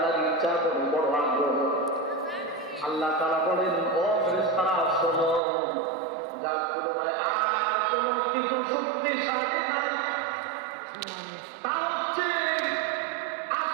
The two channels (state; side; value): drops out; left; at 5.4 s